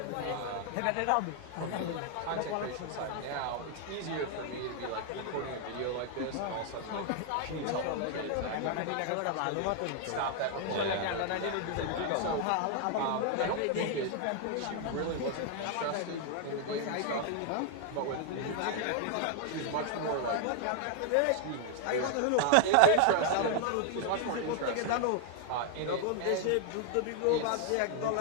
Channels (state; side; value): different; both; correlation 0.00